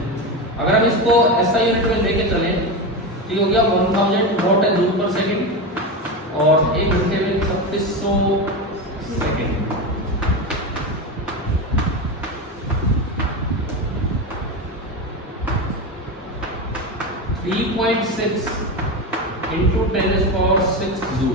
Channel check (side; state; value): both; normal; correlation 0.18